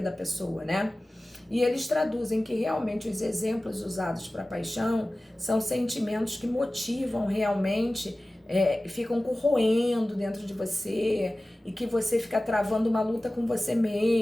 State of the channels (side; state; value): both; normal; correlation 0.97